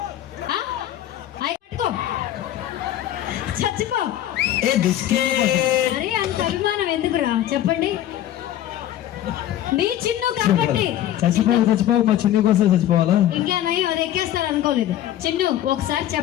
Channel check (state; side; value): quieter; right; 12.3 dB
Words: పట్టుకో చచ్చిపో. అరే అంత అభిమానం ఎందుకురా చెప్పండి? నీ చిన్ను కాబట్టి చచ్చిపోవు మా చిన్ను కోసం చచ్చిపోవాలా? ఇంకేనయ్యో అది ఎక్కేస్తారు అనుకోలేదు. చిన్ను ఒకసారి